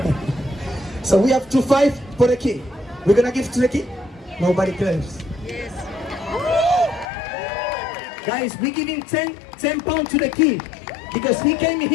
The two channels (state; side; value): drops out; right; at 7.1 s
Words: so we have 2-5 for the kid. We're gonna give to the kid. Nobody cares. Yes. Guys, we give him 10 pounds to the kid because he came